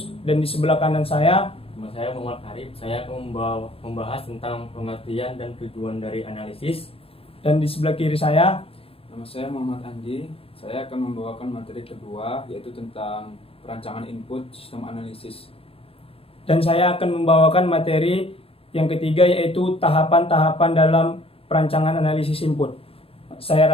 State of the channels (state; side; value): late; right; 0.27 ms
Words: dan di sebelah kanan saya Muhammad Arif. Saya akan membahas tentang pengertian dan tujuan dari analisis. Dan di sebelah kiri saya Nama saya Muhammad Andi. Saya akan membawakan materi kedua, yaitu tentang perancangan input sistem analisis. dan saya akan membawakan materi yang ketiga, yaitu tahapan-tahapan dalam perancangan analisis input. Saya